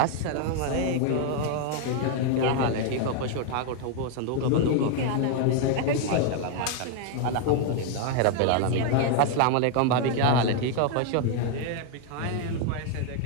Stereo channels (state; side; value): different; both; correlation 0.00